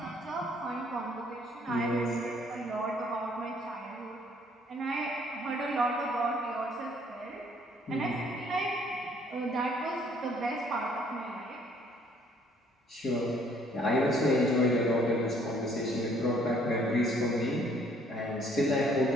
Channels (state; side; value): normal; both; correlation 0.62